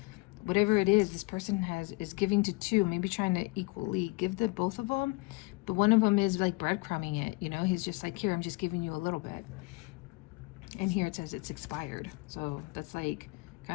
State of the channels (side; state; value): right; quieter; 26.0 dB